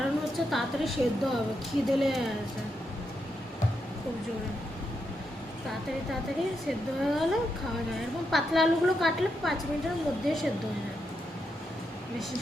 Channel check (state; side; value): normal; both; correlation 0.83